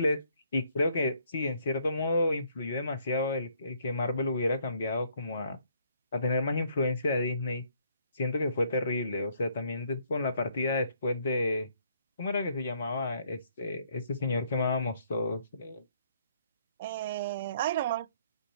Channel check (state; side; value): inverted; both; correlation -0.66